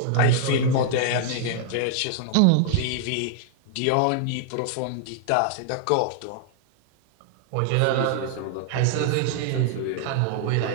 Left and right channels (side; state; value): both; different; correlation -0.01